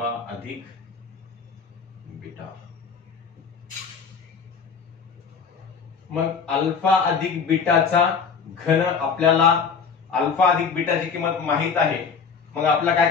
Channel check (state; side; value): quieter; right; 5.8 dB